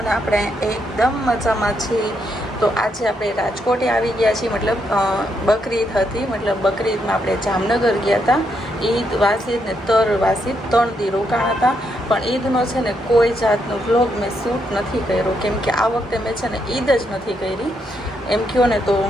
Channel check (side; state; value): both; normal; correlation 0.78